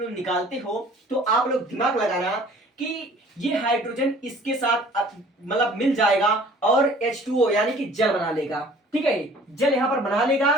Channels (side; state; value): both; normal; correlation 0.51